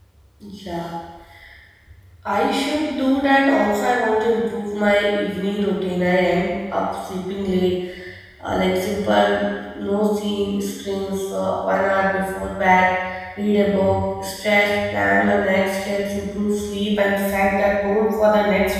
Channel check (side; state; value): both; identical; correlation 1.00